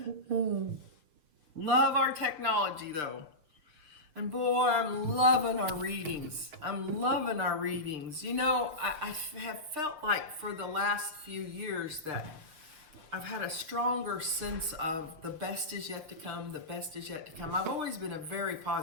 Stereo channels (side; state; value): left; late; 6.6 ms